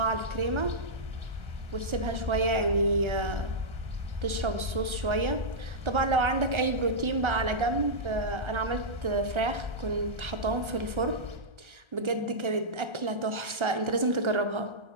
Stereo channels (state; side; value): late; left; 1.3 ms